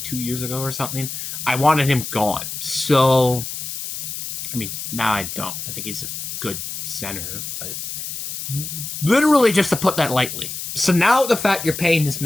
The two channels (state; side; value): noise; left; hiss, 7 dB below the sound